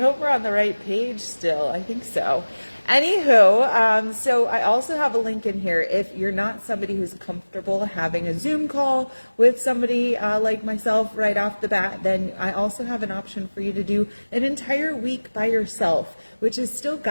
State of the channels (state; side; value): inverted; both; correlation -1.00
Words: we're on the right page still. I think so. Anywho, so I also have a link in here. If you're not somebody who's comfortable having a Zoom call with somebody like myself right off the bat, then I also have an option for you to do an entire week by yourself, which is still